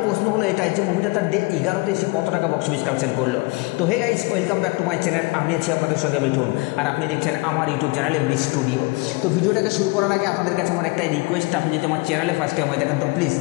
প্রশ্ন হলো এটাই যে মুভিটা তার ডে 11তে এসে কত টাকা বক্স অফিস কালেকশন করলো। তো hey guys, welcome back to my channel. আমি আছি আপনাদের সঙ্গে মিঠুন, আর আপনি দেখছেন আমার ইউটিউব চ্যানেল এমবি স্টুডিও। তো ভিডিওটাকে শুরু করার আগে আপনাদের কাছে আমার একটাই রিকোয়েস্ট, আপনি যদি আমার চ্যানেলে ফার্স্ট টাইম হয়ে থাকেন তো প্লিজ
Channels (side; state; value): right; quieter; 25.7 dB